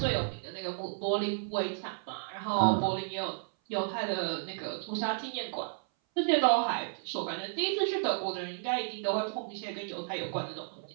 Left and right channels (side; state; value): left; silent; 56 dB below the other